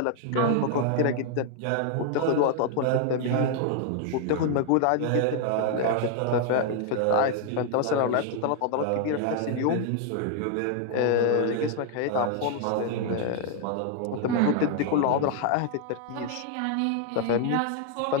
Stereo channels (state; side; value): different; both; correlation 0.00